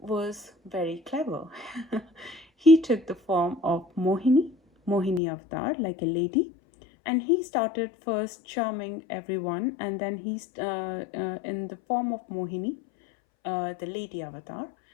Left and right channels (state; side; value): drops out; right; at 5.2 s